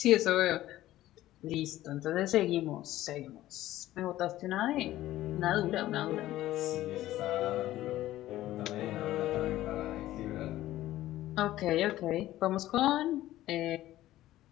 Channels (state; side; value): quieter; right; 14.9 dB